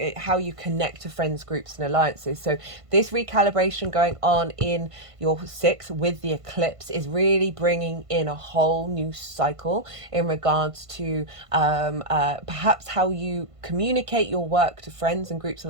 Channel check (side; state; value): left; late; 1.5 ms